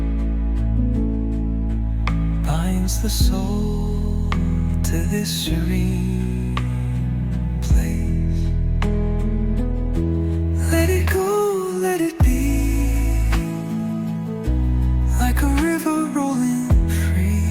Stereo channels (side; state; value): both; identical; correlation 1.00